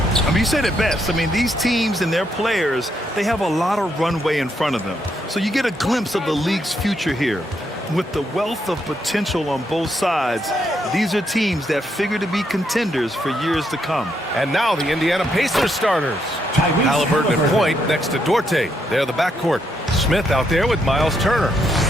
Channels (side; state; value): both; normal; correlation 0.77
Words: I mean, you said it best. I mean, these teams and their players, they have a lot of runway in front of them. So you get a glimpse of the league's future here. With the wealth of potential on both sides, these are teams that figure to be contenders for years to come. And now the Indiana Pacers starters. Halliburton at point next to Duarte. They're the backcourt. Smith out there with Miles Turner.